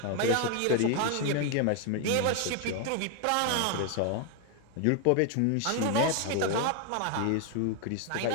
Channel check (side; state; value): both; different; correlation 0.01